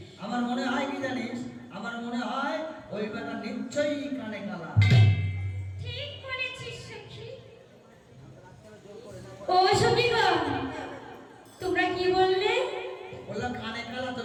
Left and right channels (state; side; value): identical; both; correlation 1.00